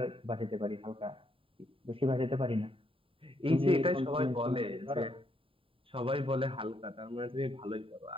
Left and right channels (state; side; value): late; left; 0.26 ms